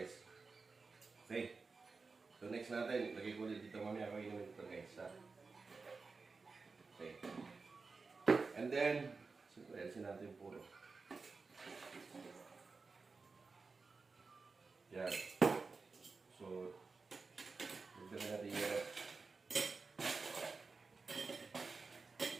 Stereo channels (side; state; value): left; quieter; 4.3 dB